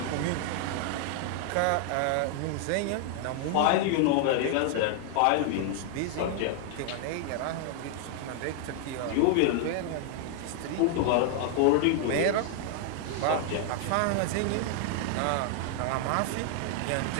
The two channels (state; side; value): different; both; correlation 0.00